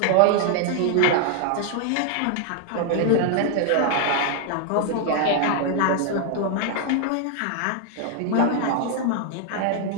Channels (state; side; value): different; both; correlation 0.00